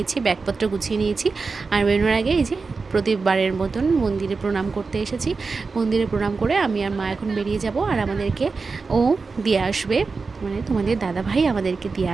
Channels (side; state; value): left; quieter; 4.4 dB